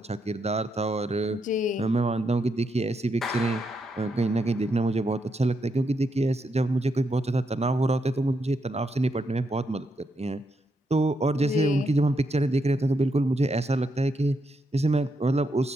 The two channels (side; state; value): both; normal; correlation 0.80